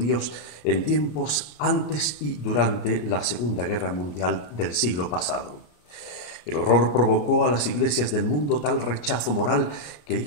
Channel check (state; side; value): late; right; 33 ms